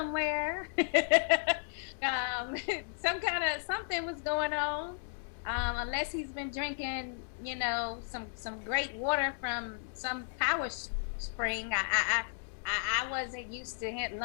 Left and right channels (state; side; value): silent; right; digital silence